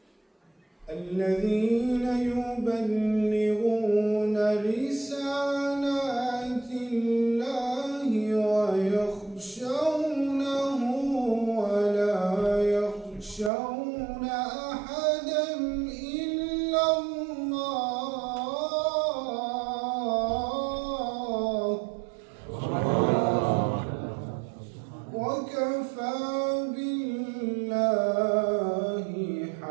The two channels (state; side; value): drops out; left; at 13.5 s